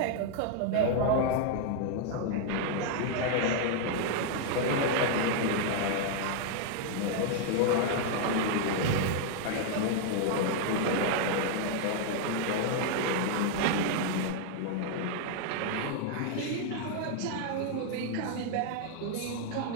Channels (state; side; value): different; both; correlation 0.00